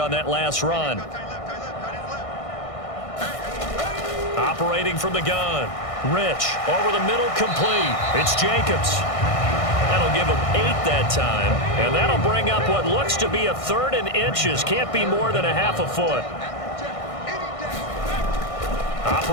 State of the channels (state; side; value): late; right; 1.6 ms